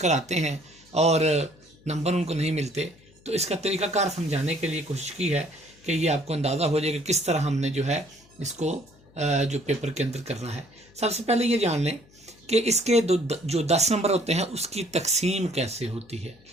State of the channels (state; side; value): noise; left; hum, 28 dB below the sound